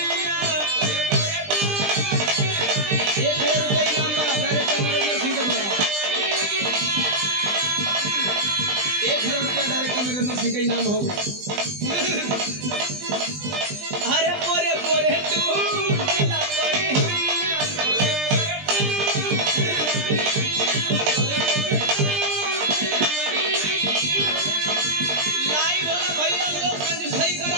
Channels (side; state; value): left; late; 20 ms